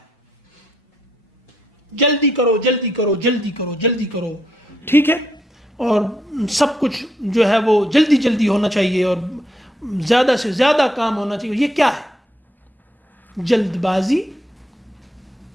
جلدی کرو جلدی کرو جلدی کرو جلدی کرو, ٹھیک ہے, اور سب کچھ جو ہے وہ جلدی جلدی ہونا چاہیے اور زیادہ سے زیادہ کام ہونا چاہیے. یہ کیا ہے؟ جلد بازی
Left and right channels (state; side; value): normal; both; correlation 0.76